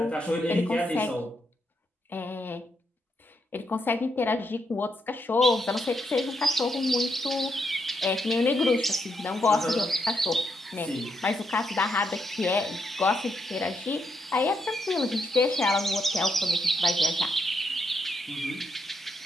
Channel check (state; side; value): normal; both; correlation 0.79